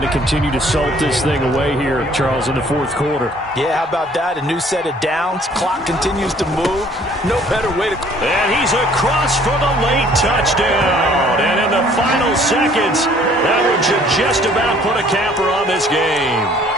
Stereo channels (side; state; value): both; normal; correlation 0.57